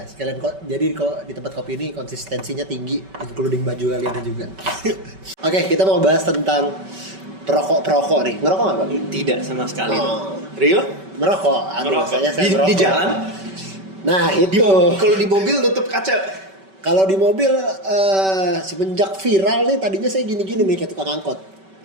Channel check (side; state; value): left; late; 5.2 ms